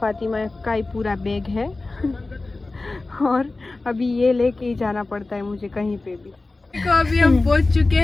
फातिमा का ही पूरा बैग है और अभी ये लेके ही जाना पड़ता है मुझे कहीं पे भी। देखो अभी हम पहुंच चुके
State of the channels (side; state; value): right; quieter; 3.3 dB